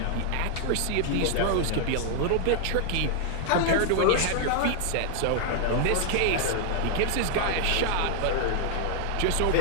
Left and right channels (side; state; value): both; different; correlation 0.00